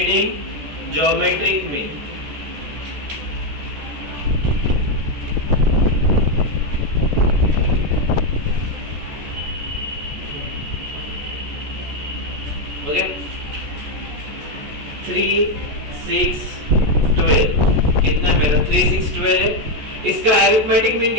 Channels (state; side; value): late; left; 14 ms